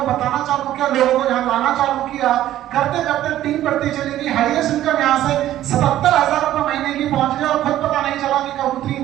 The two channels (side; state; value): left; quieter; 13.2 dB